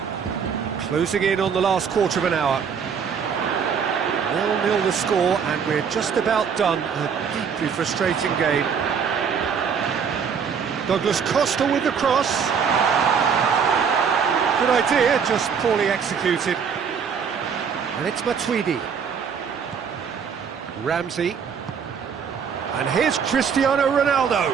Closing in on the last quarter of an hour. 0-0 the score, and we're just about done. A deeply frustrating game. Douglas Costa with the cross. Good idea, just poorly executed. And it's Matuidi. Ramsey. And here's Cristiano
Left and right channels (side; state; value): left; quieter; 6.7 dB